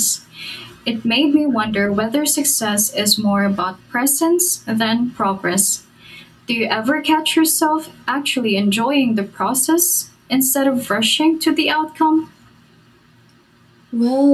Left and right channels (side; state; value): both; identical; correlation 1.00